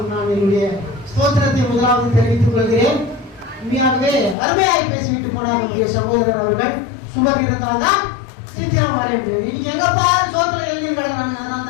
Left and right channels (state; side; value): drops out; right; at 4.4 s